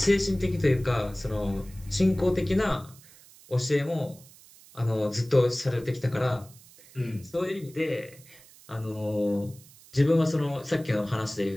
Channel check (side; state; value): right; noise; hiss, 23 dB below the sound